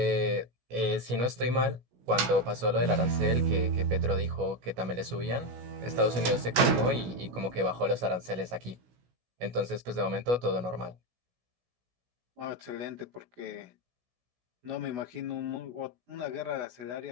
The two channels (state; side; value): late; left; 16 ms